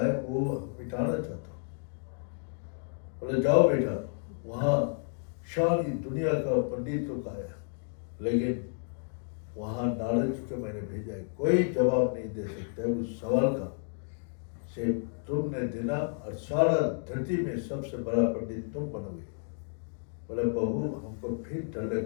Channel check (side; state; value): right; silent; 57 dB below the other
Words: है वो मिटाना चाहता हूँ। बोले जाओ बेटा, वहाँ सारी दुनिया का पंडित लोग आया, लेकिन वहाँ नारद जी को मैंने भेजा है, कोई जवाब नहीं दे सकता है उस सवाल का से तुमने देना और सारा धरती में सबसे बड़ा पंडित तुम बनोगे। बोले बहू हमको फिर डर